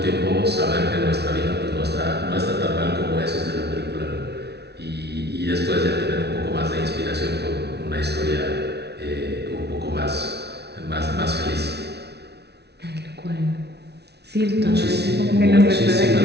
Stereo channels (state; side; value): late; left; 0.49 ms